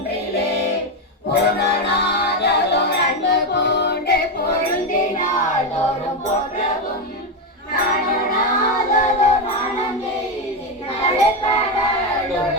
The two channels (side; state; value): both; normal; correlation 0.09